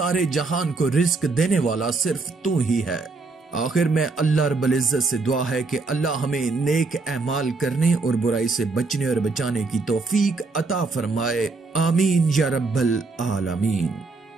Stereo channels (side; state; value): left; quieter; 3.8 dB